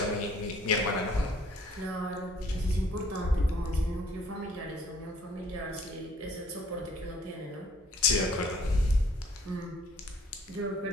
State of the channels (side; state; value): both; normal; correlation 0.58